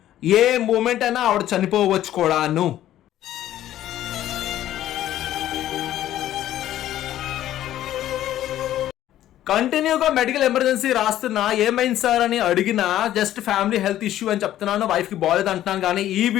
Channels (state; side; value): quieter; right; 12.8 dB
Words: ఏ moment అయినా ఆవిడ చనిపోవచ్చు కూడాను. కంటిన్యూగా మెడికల్ ఎమర్జెన్సీ రాస్తున్నా ఏమైంది సార్ అని అడిగినా జస్ట్ ఫ్యామిలీ హెల్త్ ఇష్యూ అని చెప్తున్నాను, వైఫ్కి బాగాలేదు అంటున్నాను. కానీ ఈ